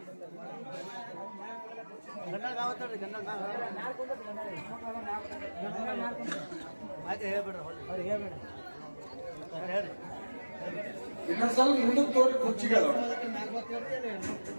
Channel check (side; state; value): both; inverted; correlation -1.00